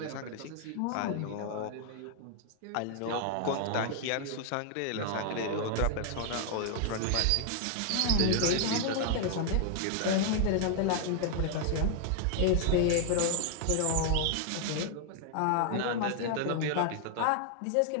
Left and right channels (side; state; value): both; different; correlation 0.00